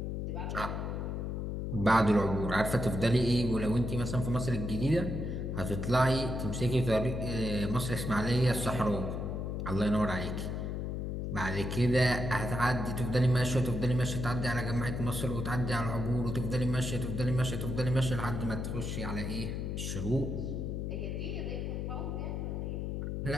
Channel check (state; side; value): noise; left; hum, 3 dB below the sound